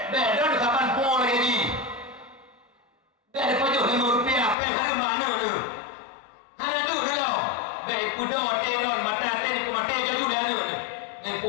Bedan kapan po lagi ni. Dah pajak RM5 pen ada mana tu? Kuda teron mata ten ku mate jaju dia ni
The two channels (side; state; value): right; drops out; at 4.5 s